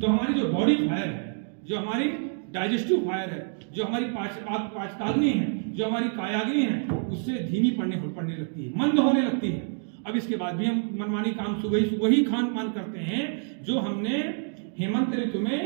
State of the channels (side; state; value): left; silent; 59 dB below the other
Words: हमारी जो बॉडी फायर है, जो हमारी डाइजेस्टिव फायर है, जो हमारी पाचकाग्नि है, जो हमारी कायाग्नि है, उससे धीमी पड़ने लगती है, मंद होने लगती है। अब इसके बाद भी हम मनमानी काम सुबह ही खान पान करते हैं जो हमने हेमंत ऋतु